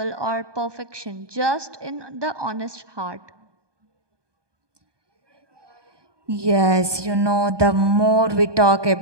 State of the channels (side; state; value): left; late; 1.2 ms